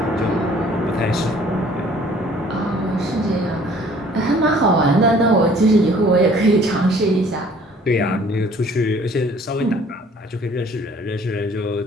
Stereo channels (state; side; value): normal; both; correlation 0.55